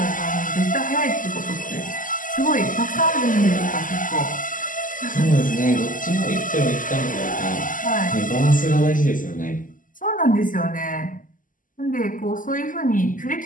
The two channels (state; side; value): late; right; 0.39 ms